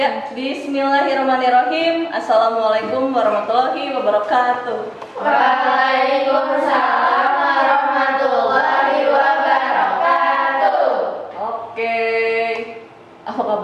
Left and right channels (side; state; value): both; identical; correlation 1.00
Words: bismillahirrahmanirrahim. Assalamualaikum warahmatullahi wabarakatuh. Waalaikumsalam warahmatullahi wabarakatuh. Oke. Apa